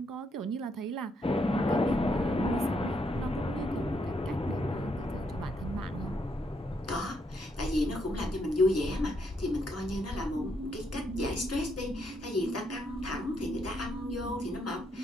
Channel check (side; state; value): both; normal; correlation 0.75